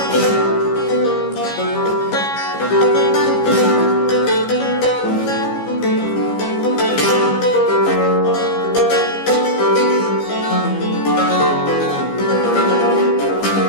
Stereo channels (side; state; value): right; late; 15 ms